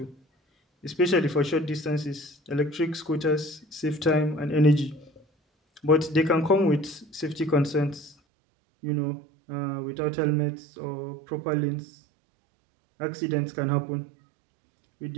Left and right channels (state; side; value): drops out; left; at 8.2 s